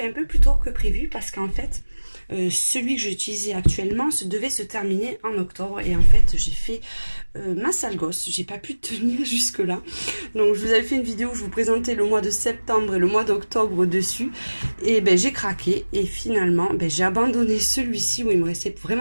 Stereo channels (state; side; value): inverted; both; correlation -1.00